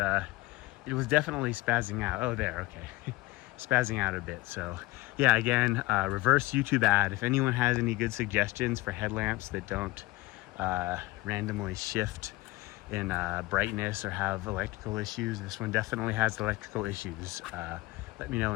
it was definitely spazzing out. Oh, there, okay. Spazzing out a bit. So yeah, again, reverse YouTube ad. If anyone has any good suggestions for headlamps that don't randomly shift in brightness or have electrical issues, this one definitely has electrical issues. Let me know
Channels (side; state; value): right; quieter; 20.3 dB